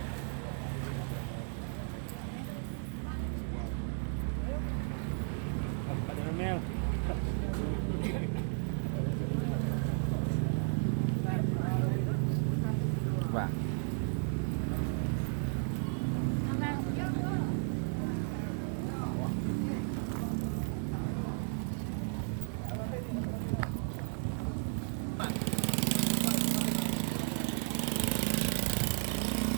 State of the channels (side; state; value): left; silent; 55 dB below the other